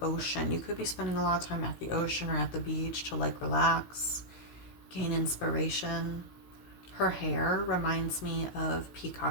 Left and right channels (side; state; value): right; late; 16 ms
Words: ocean. You could be spending a lot of time at the ocean or at the beach to like relax, gain inspiration. Her hair reminds me of